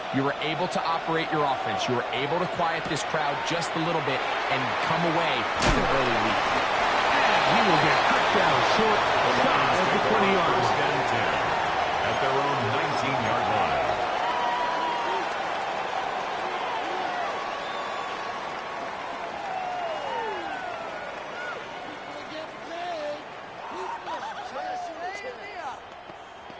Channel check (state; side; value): identical; both; correlation 1.00